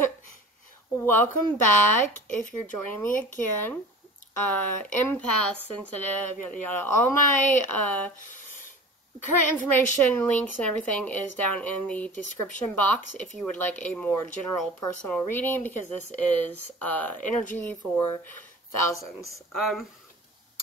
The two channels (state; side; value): normal; both; correlation 0.40